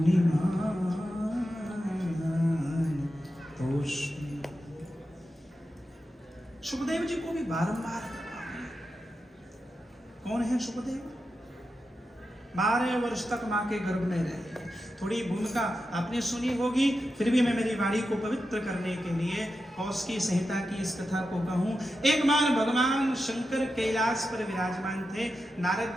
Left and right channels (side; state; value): both; normal; correlation 0.90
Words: तोष्मि। सुखदेव जी को भी बारंबार कौन है सुखदेव? 12 वर्ष तक मां के गर्भ में रहे। थोड़ी भूमिका आपने सुनी होगी, फिर भी मैं मेरी वाणी को पवित्र करने के लिए कौशिकी संहिता की इस कथा को कहूं। एक बार भगवान शंकर कैलाश पर विराजमान थे। नारद